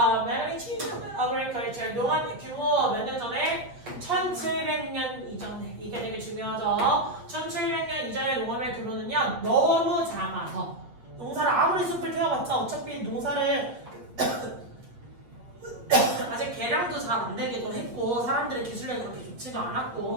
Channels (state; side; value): late; left; 8.3 ms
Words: magnitude of agriculture 농업의 규모 몇 년 전에? 1700년 이전에. 이게 되게 중요하죠. 1700년 이전의 농업의 규모는요 너무 작아서 농사를 아무리 숲을 태워봤자 어차피 농사를 아직 개량도 잘 안 되기도 했고 사람들의 기술력이 그렇게 좋지도